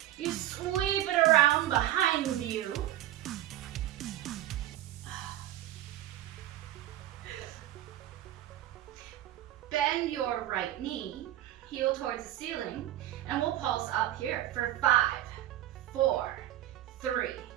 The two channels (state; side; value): quieter; left; 13.4 dB